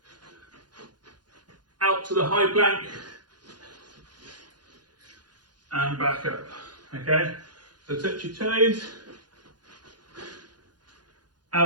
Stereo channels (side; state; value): left; late; 0.70 ms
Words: out to the high plank, and back up. Okay, so touch your toes,